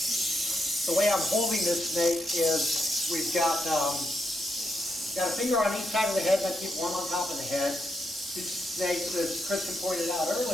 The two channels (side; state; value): both; normal; correlation 0.81